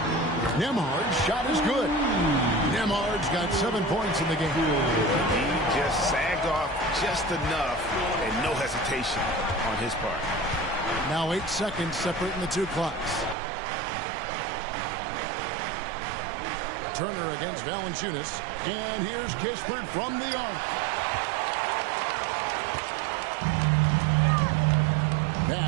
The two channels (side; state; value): left; drops out; at 13.4 s